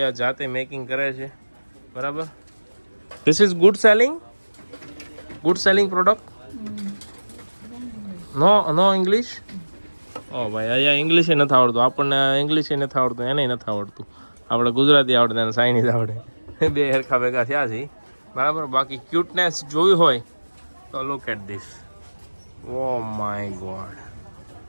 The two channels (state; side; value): inverted; both; correlation -1.00